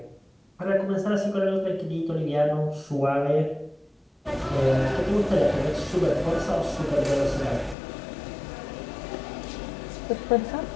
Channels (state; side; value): drops out; right; at 7.8 s